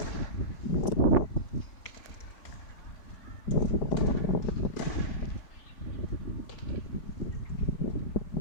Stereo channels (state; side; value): late; right; 4.1 ms